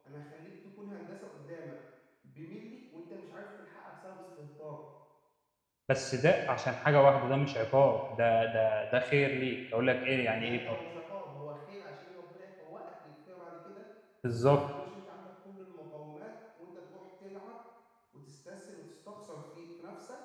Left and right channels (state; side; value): identical; both; correlation 1.00